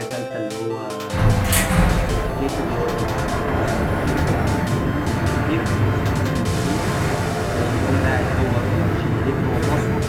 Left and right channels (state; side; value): identical; both; correlation 1.00